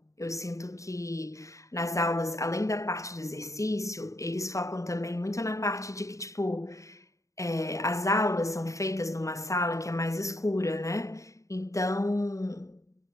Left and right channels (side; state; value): right; late; 0.15 ms